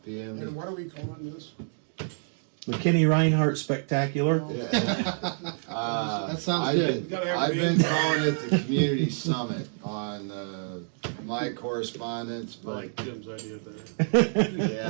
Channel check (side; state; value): left; silent; digital silence